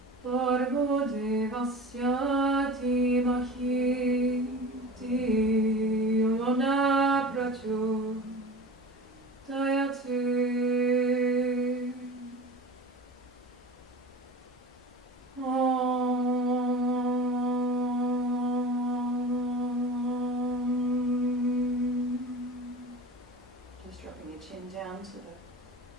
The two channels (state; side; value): normal; both; correlation 0.34